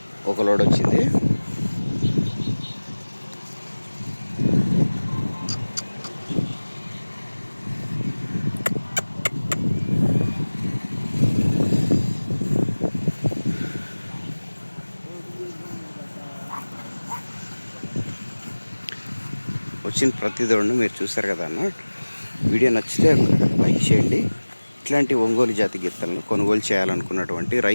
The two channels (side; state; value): both; inverted; correlation -1.00